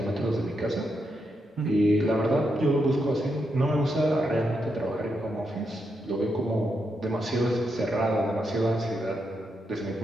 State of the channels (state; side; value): normal; both; correlation 0.82